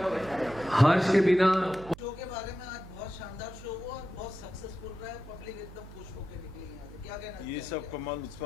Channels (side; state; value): right; noise; hum, 16 dB below the sound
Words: हर्ष के बिना। शो के बारे में आज बहुत शानदार शो हुआ और बहुत सक्सेसफुल रहा है, पब्लिक एकदम खुश होकर निकली यहाँ से। क्या कहना? ये सब कमाल